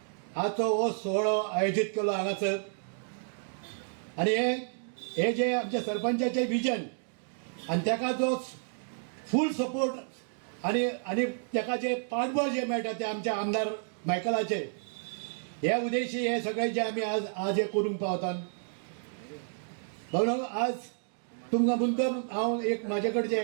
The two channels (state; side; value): silent; left; digital silence